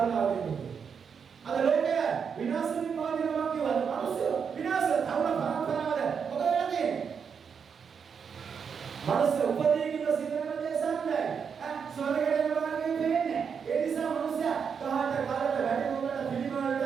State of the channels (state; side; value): quieter; left; 6.6 dB